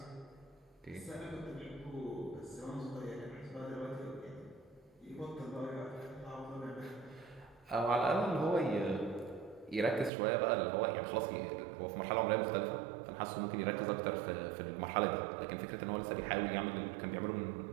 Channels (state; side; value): drops out; left; at 10.1 s